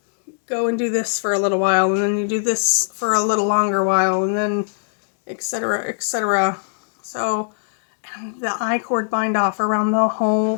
go and do this for a little while, and then you do this for a little longer while, and then etc., etc. So, and the I-cord bind off around the whole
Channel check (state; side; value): silent; right; digital silence